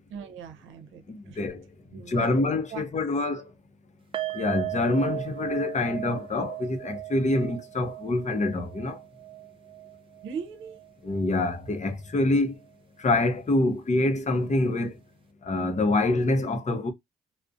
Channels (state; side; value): normal; both; correlation 0.56